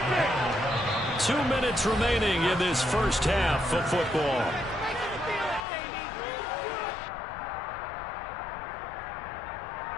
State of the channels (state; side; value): drops out; right; at 5.7 s